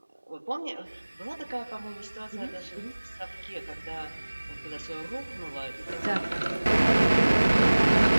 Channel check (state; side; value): inverted; both; correlation -1.00